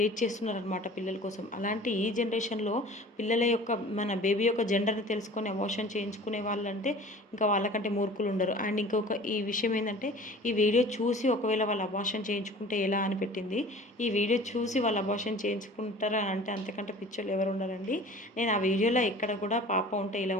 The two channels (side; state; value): both; normal; correlation 0.44